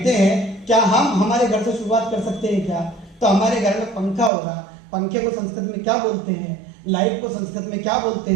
हैं, क्या हम हमारे घर से शुरुआत कर सकते हैं क्या? तो हमारे घर में पंखा होगा, पंखे को संस्कृत में क्या बोलते हैं, लाइट को संस्कृत में क्या बोलते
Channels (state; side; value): drops out; left; at 4.3 s